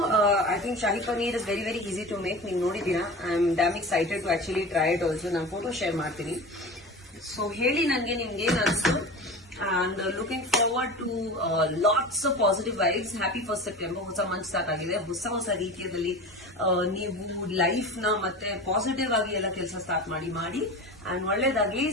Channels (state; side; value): normal; both; correlation 0.32